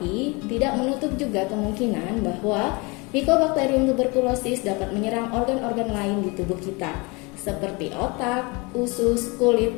tidak menutup juga kemungkinan bahwa Mycobacterium tuberculosis dapat menyerang organ-organ lain di tubuh kita, seperti otak, usus, kulit,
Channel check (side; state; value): right; quieter; 27.5 dB